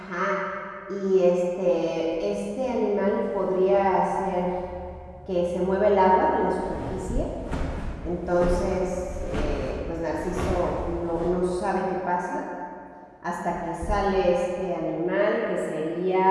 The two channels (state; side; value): identical; both; correlation 1.00